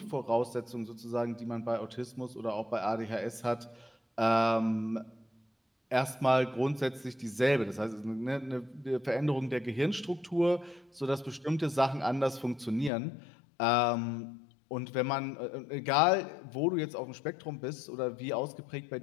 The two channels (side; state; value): right; drops out; at 12.9 s